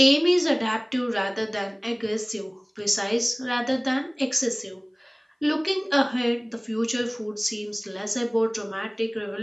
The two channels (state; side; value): identical; both; correlation 1.00